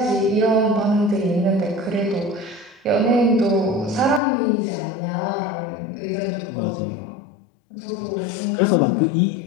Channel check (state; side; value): drops out; right; at 4.2 s